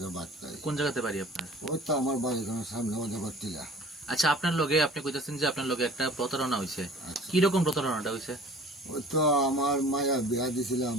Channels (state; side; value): normal; both; correlation 0.47